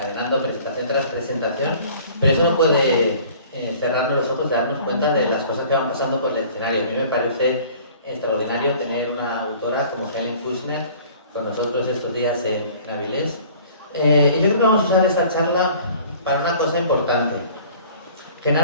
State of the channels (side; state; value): both; inverted; correlation -0.49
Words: presentación tras presentación, pero eso no puede cerrarnos los ojos y darnos cuenta de las cosas que van pasando por el escenario. A mí me parece extraordinario tener una autora como Helen Kushner con nosotros estos días en Avilés. Y yo creo que vamos a usar esta charla para una cosa importante.